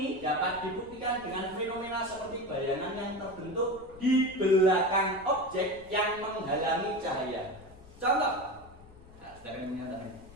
dapat dibuktikan dengan fenomena seperti bayangan yang terbentuk di belakang objek yang menghalangi cahaya. Contoh,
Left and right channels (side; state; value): left; noise; rumble, 22 dB below the sound